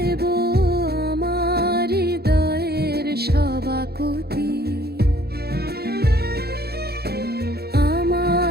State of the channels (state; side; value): late; left; 0.46 ms